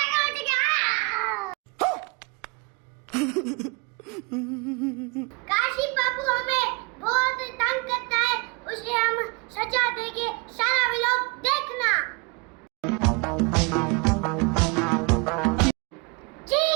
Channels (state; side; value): quieter; left; 30.6 dB